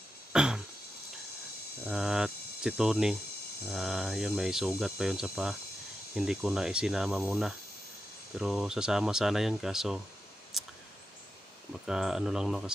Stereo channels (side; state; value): both; normal; correlation 0.89